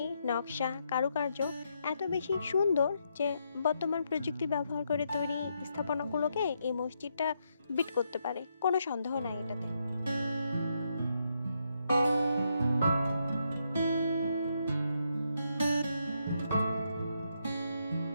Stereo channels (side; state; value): both; inverted; correlation -0.79